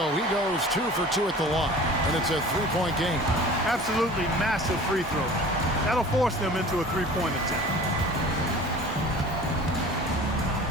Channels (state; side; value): normal; both; correlation 0.42